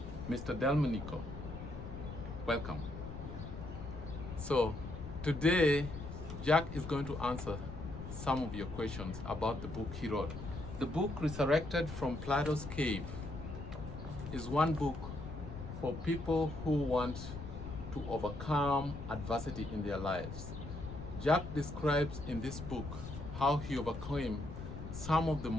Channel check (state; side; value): noise; left; rumble, 9 dB below the sound